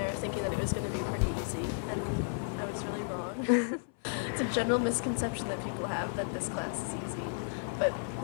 thinking that it was going to be pretty easy, and I was really wrong. It's a general misconception that people have that this class is easy, but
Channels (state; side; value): silent; right; 56 dB below the other